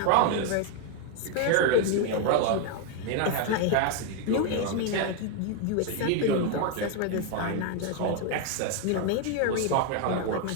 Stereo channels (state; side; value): different; both; correlation 0.01